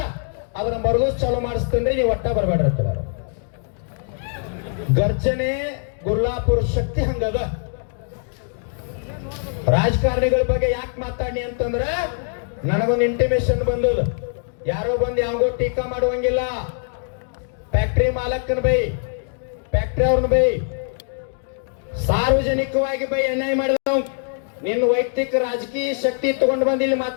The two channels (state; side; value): silent; right; 64 dB below the other